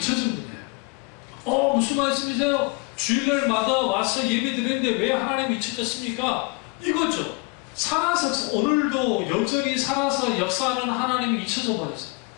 분이에요. 무슨 말씀이세요? 주일날마다 와서 예배 드리는데 왜 하나님이 잊혀졌습니까? 이거죠. 살아서, 오늘도 여전히 살아서 역사하는 하나님이 잊혀져 버렸어요.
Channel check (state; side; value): quieter; right; 28.0 dB